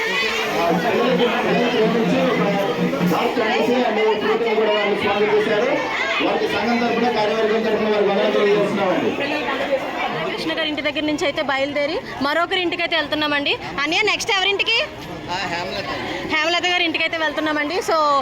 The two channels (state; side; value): identical; both; correlation 1.00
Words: కూడా వారిని స్వాగతం చేశారు. వారికి సంఘం తరఫున కార్యవర్గం తరఫున వారికి వందనాలు తెలియజేస్తున్నామండి. కృష్ణ గారి ఇంటి దగ్గర నుంచి అయితే బయలుదేరి మరొకరి ఇంటికి అయితే వెళ్తున్నామండి. అన్నయ్య నెక్స్ట్ ఎవరింటికి? హేమలత గారి ఇంటికి అయితే వెళ్తున్నామండి. సో